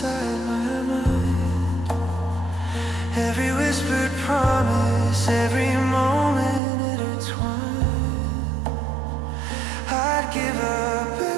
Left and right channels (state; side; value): drops out; left; at 6.6 s